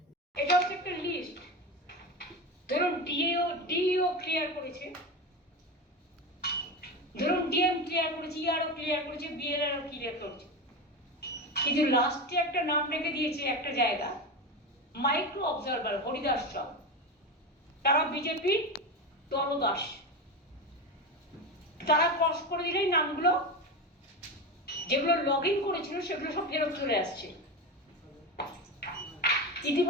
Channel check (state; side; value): normal; both; correlation 0.20